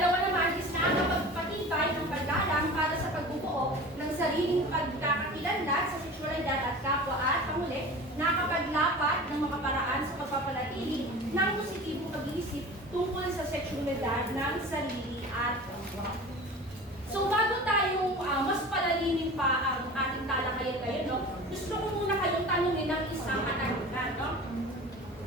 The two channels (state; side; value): normal; both; correlation 0.37